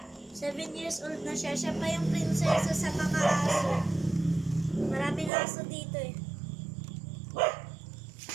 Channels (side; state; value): left; drops out; at 5.3 s